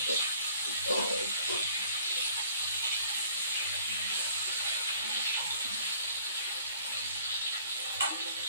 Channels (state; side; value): inverted; both; correlation -0.55